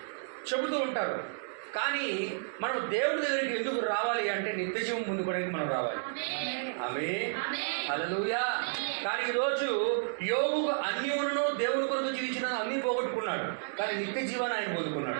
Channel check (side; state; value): left; silent; digital silence